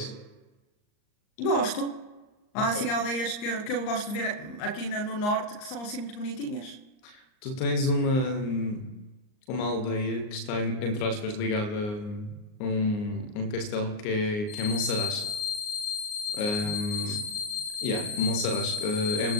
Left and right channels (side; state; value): right; late; 38 ms